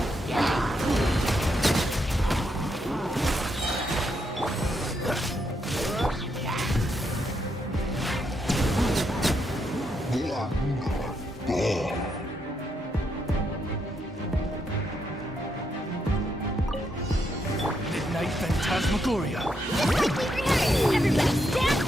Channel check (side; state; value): both; normal; correlation 0.79